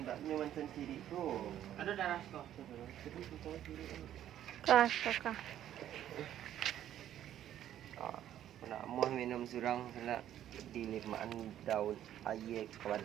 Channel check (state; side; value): quieter; left; 11.4 dB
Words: macam ciri tu. Ada darah tu. Kah, kakak. Ah, nak mau minum surang nak dilimaan daun air ke